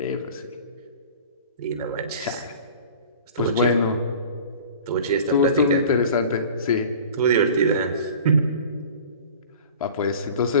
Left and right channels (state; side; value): inverted; both; correlation -0.42